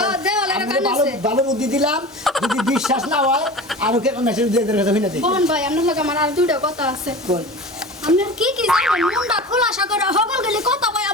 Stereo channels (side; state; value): both; normal; correlation 0.34